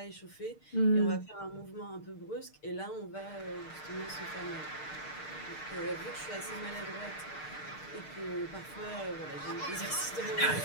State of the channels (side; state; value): right; late; 6.6 ms